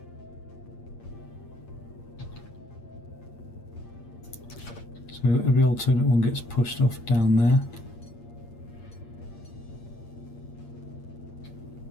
so every alternate one gets pushed off down there.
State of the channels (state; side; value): late; right; 8.6 ms